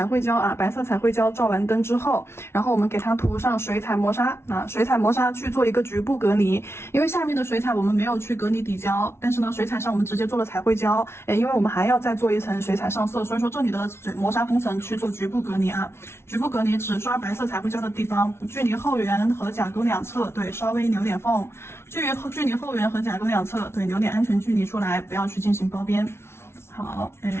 绘胶啊，白色彩绘胶照完灯之后，然后我们给它涂上水彩磨砂啊，水彩磨砂去做一个局部隔离，因为下面的水彩我们没有去隔离底胶，但是呢，水彩上我们直接做了彩绘胶，因为我们还要再做一层水彩上色，所以说这里的磨砂封层去做局部隔离啊，局部隔离只刷白色彩绘胶的地方，距离后缘和甲沟两侧，对，稍微留点缝，距离后缘和甲沟两侧，对，留点安全距离出来，不要去进行包边。好，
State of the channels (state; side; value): late; right; 0.12 ms